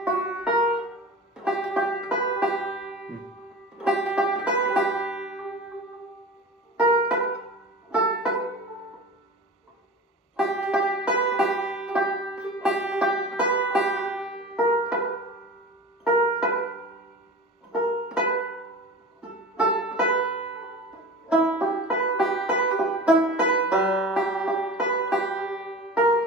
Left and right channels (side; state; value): both; normal; correlation 0.36